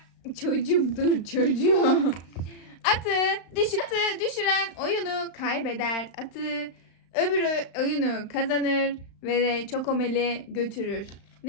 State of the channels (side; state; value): right; late; 35 ms